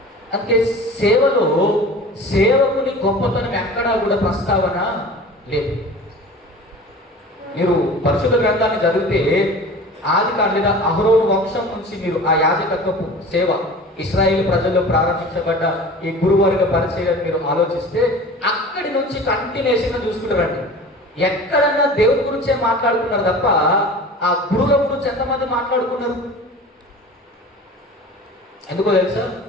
అందుకే సేవలో సేవకుని గొప్పతనం ఎక్కడా కూడా ప్రస్తావన లేదు. మీరు పరిశుద్ధ గ్రంథాన్ని చదివితే ఆదికాండం లేదా అహరోను వంశం నుంచి మీరు ఆ యాజకత్వపు సేవ ఇశ్రాయేలు ప్రజల్లో ప్రారంభించబడ్డ ఈ గురువర్గ పరిచయం మీరు ఆలోచిస్తే అక్కడి నుంచి కంటిన్యూషన్గా చూసుకుంటారండి. ఎక్కడన్నా దేవుడి గురించే మాట్లాడుకున్నారు తప్ప ఆ గురువుల గురించి ఎంతమంది మాట్లాడుకున్నారు? ఎందుకో తెలుసా?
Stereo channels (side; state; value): both; normal; correlation 0.39